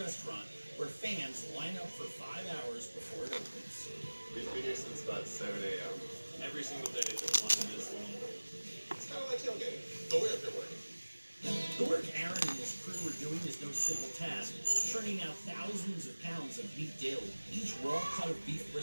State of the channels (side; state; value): both; inverted; correlation -1.00